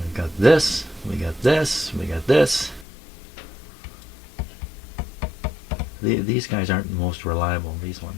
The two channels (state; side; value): drops out; right; at 2.9 s